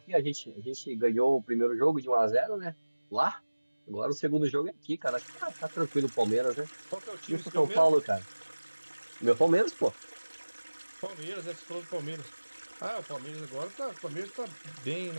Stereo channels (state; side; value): inverted; both; correlation -1.00